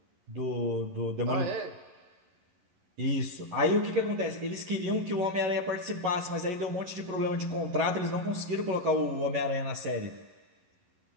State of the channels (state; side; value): late; left; 11 ms